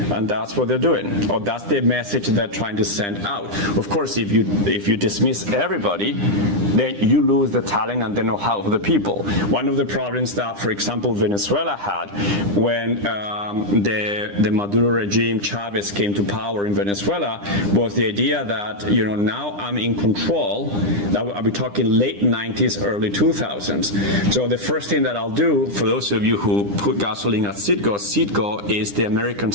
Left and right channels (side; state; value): left; late; 9.9 ms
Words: And that's what they're doing. Or that's the message they're trying to send out. Of course, if you dismiss everybody, then you lose the talent and the know-how of the people. One of the problems that, for example, Venezuela had when the Maduro regime, Chavez, came to power in Venezuela was the idea that, now I'm in control. I'll be talking late 90s, early 2000s. So the first thing that I'll do, for those of you who put gasoline at Citgo, Citgo is the American